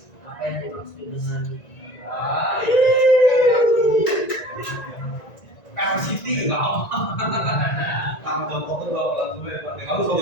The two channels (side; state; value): right; late; 1.9 ms